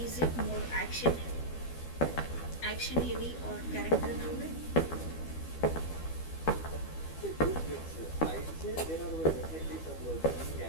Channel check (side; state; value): right; late; 12 ms